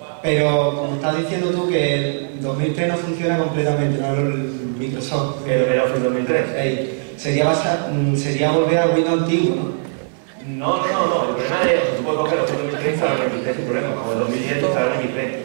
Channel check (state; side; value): silent; left; 66 dB below the other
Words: Pero como estás diciendo tú que el 2003 no funciona completamente, no el Microsoft. ¿El Office 2003? Sería volver al Windows antiguo, ¿no? No. El problema es, tú puedes coger los 2003 para el 2003 sin problema, como el 2010 para el